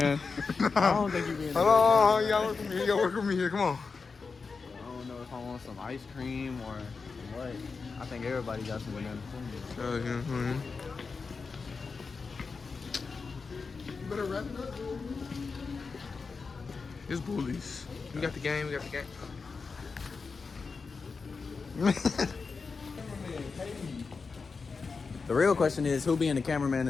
I don't think you're being a good Hello, y'all work with me. Y'all work with me here. Come on. I don't know if I want some ice cream or what. I think everybody got some banana. You better wrap it up. It's bullies. We got the game. We got the game. The real question is who being the cameraman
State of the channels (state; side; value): quieter; right; 4.7 dB